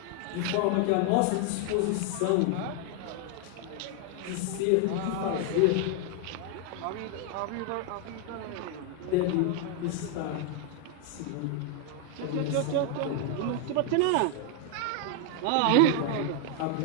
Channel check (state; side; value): different; both; correlation 0.00